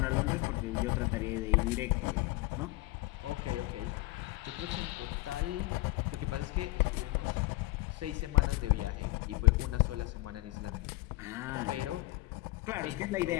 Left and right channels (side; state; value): right; quieter; 21.2 dB